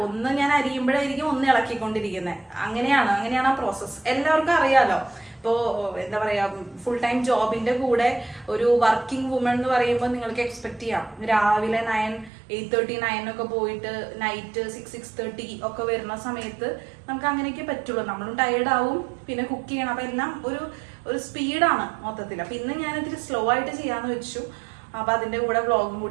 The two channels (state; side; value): drops out; left; at 12.3 s